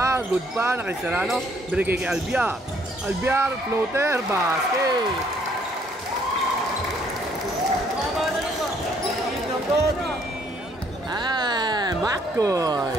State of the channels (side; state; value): both; normal; correlation 0.65